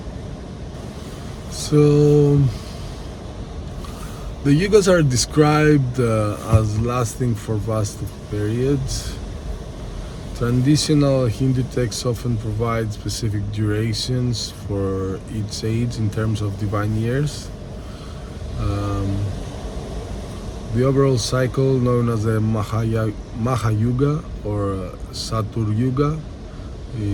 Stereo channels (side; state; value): both; identical; correlation 1.00